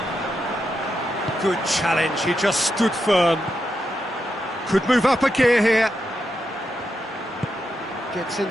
Good challenge, he just stood firm. Could move up a gear here. Gets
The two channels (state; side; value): normal; both; correlation 0.85